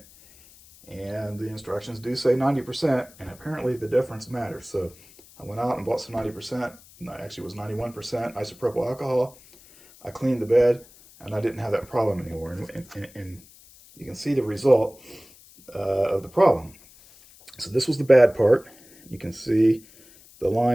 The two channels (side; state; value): left; noise; hiss, 24 dB below the sound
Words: and the instructions do say 90%, and apparently the difference matters. So I went out and bought some 90%, actually it was 91% isopropyl alcohol. I cleaned the bed, and I didn't have that problem anymore. And you can see the result of the problem. So this was the bad part. You can see the